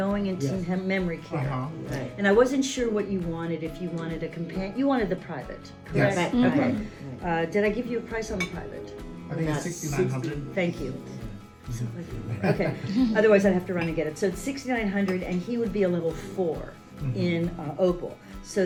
going into Yes. memory care, Right. and I wasn't sure what you wanted. If you wanted a companion, you wanted the private, correct? Yes. Right. Okay. Did I give you a price on the private? I think it's That's 6,900. Thank you. Okay. Otherwise, I'd have to run and get it. So it's 6,900, and he would be a level 4 in Opal. So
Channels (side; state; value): both; identical; correlation 1.00